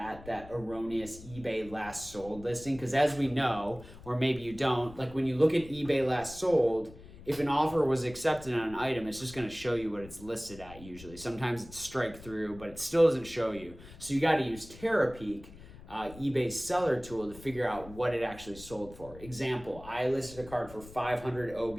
that erroneous eBay last sold listing. Because as we know, or maybe you don't, like when you look at eBay last sold, if an offer was accepted on an item, it's just gonna show you what it's listed at usually. Sometimes it's strike through, but it still doesn't show you. So you gotta use Terapeak, eBay's seller tool, to figure out what it actually sold for. Example, I listed a card for 500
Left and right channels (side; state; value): left; noise; rumble, 18 dB below the sound